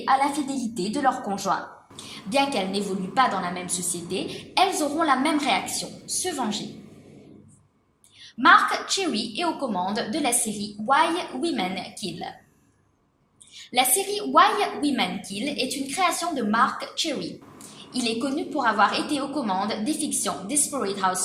à l'infidélité de leur conjoint. Bien qu'elles n'évoluent pas dans la même société, elles auront la même réaction, se venger. Mark Cherry est aux commandes de la série Why Women Kill. La série Why Women Kill est une création de Mark Cherry. Il est connu pour avoir été aux commandes des fictions Desperate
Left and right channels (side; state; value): both; identical; correlation 1.00